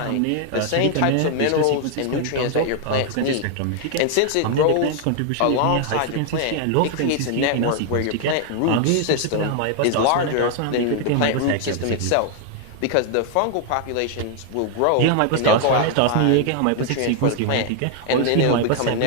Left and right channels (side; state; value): both; different; correlation 0.00